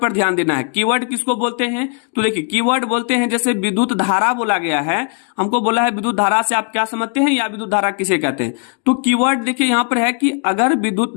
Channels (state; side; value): quieter; right; 39.6 dB